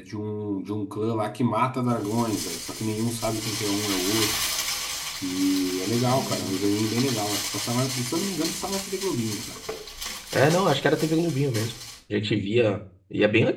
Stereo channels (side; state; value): both; identical; correlation 1.00